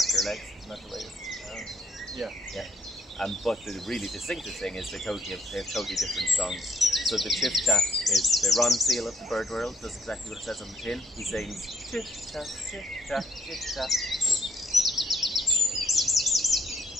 legs, isn't that the way it's Yeah. Yeah. But the really distinctive thing is they have totally different songs. So the chiff-chaff is the Ron Seal of the bird world, does exactly what it says on the tin. He sings chiff-chaff, chiff-chaff, chiff-chaff.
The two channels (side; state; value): both; normal; correlation 0.71